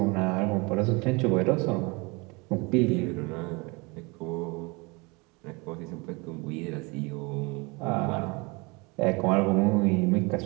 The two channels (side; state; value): left; quieter; 27.3 dB